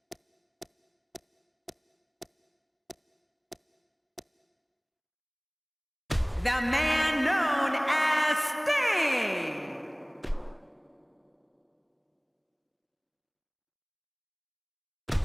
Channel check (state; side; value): identical; both; correlation 1.00